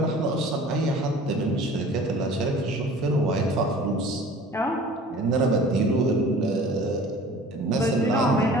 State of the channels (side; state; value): both; normal; correlation 0.45